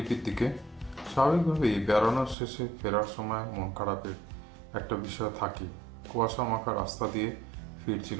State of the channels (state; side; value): drops out; left; at 2.4 s